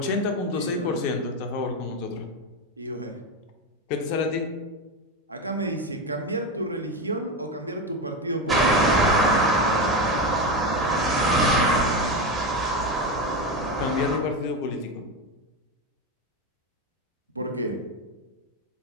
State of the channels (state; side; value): normal; both; correlation 0.16